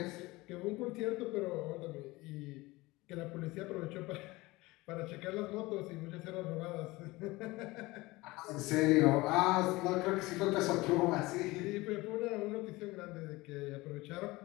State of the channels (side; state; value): right; quieter; 21.0 dB